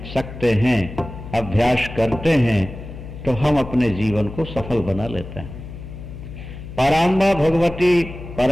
सकते हैं, अभ्यास करते हैं, तो हम अपने जीवन को सफल बना लेते हैं। पराम्बा भगवती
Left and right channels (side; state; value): left; noise; hum, 12 dB below the sound